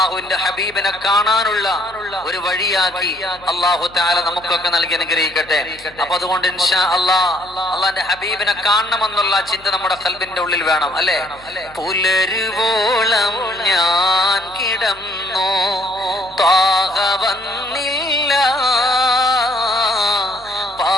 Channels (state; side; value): noise; left; hum, 25 dB below the sound